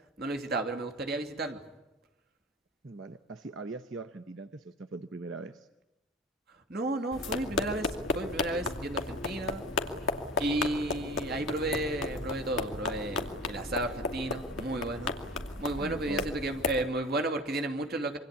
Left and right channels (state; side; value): normal; both; correlation 0.37